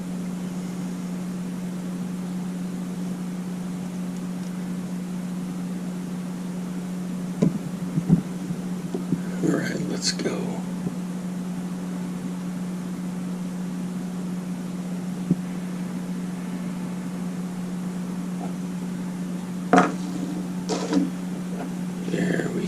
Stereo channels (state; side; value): identical; both; correlation 1.00